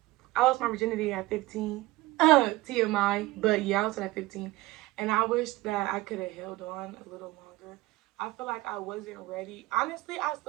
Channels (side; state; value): left; quieter; 19.0 dB